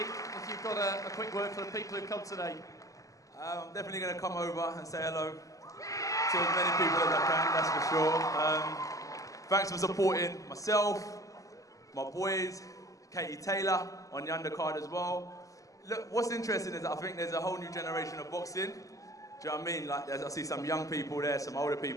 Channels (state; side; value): late; right; 0.16 ms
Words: you've got a quick word for the people who've come today. I'm definitely going to come over and say hello to as many people as I can, that's for sure. Thanks for supporting myself, my boys, Katie Taylor on the undercard as well. Look, what's interesting is that I think there's a whole new generation of boxing. Do you know what I mean? Like, I see some young people there, some older